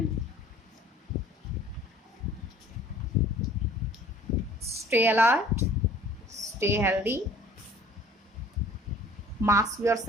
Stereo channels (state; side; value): normal; both; correlation 0.52